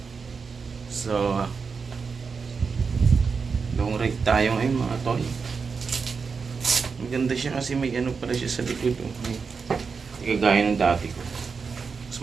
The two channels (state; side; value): quieter; left; 5.3 dB